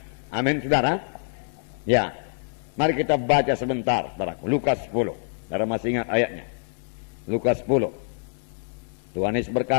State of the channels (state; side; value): silent; right; digital silence